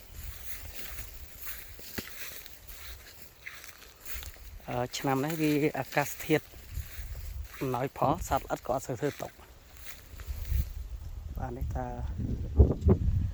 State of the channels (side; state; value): both; identical; correlation 1.00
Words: ឆ្នាំនេះវាអាកាសធាតុអំណោយផលសត្វល្អិតក៏អត់សូវធ្វើຕົកបាទនេះថា